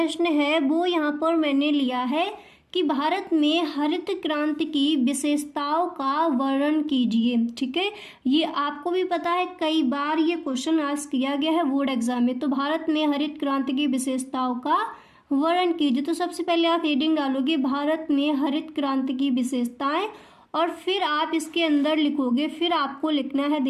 है वो यहाँ पर मैंने लिया है कि भारत में हरित क्रांति की विशेषताओं का वर्णन कीजिए, ठीक है। ये आपको भी पता है, कई बार ये क्वेश्चन आस्क किया गया है बोर्ड एग्जाम में। तो भारत में हरित क्रांति की विशेषताओं का वर्णन कीजिए। तो सबसे पहले आप हेडिंग डालोगे भारत में हरित क्रांति की विशेषताएं, और फिर आप इसके अंदर लिखोगे, फिर आपको लिखना है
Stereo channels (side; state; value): both; identical; correlation 1.00